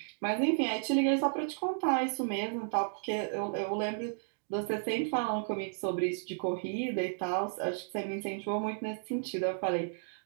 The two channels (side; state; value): left; silent; digital silence